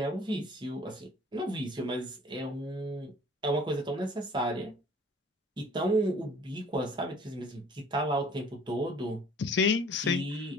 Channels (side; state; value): both; normal; correlation 0.51